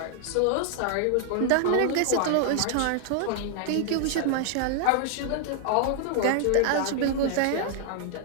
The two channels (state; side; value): different; both; correlation 0.00